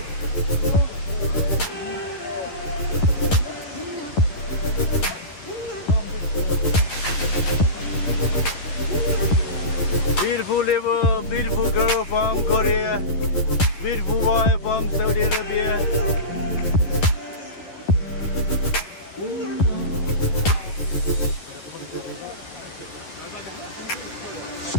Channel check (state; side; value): late; right; 11 ms